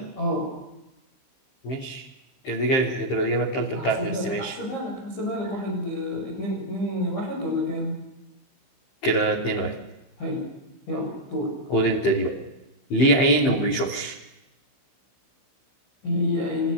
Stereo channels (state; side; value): late; right; 15 ms